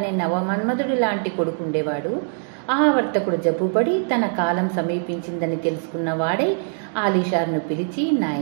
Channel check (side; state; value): left; silent; digital silence